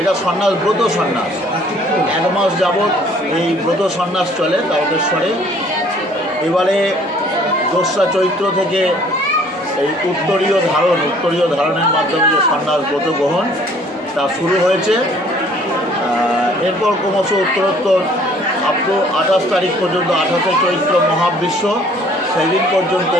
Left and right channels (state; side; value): normal; both; correlation 0.57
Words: সন্ন্যাস ব্রত সন্ন্যাস। 1 মাস যাবৎ এই ব্রত সন্ন্যাস চলে তারকেশ্বরে। এবারে 2রা চৈত্র থেকে এই উত্তরীয় ধারণের মাধ্যমে যে সন্ন্যাস ব্রত গ্রহণ তা শুরু হয়েছে। এরপর ক্রমশ উত্তরোত্তর আপ টু 28 তারিখ পর্যন্ত, 28 চৈত্র মহাবিশ্ব, সেই দিন পর্যন্ত